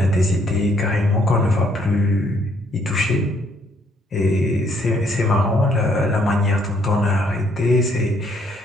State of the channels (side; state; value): both; normal; correlation 0.67